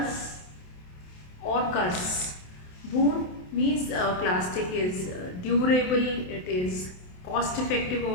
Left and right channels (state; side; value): late; right; 27 ms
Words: or curse. Boon means plastic is durable, it is cost effective